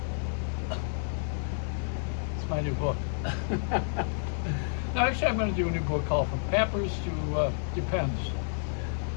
It's my new book. No, actually, I'm going to do a new book called From Pampers to Depends.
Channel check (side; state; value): right; silent; 58 dB below the other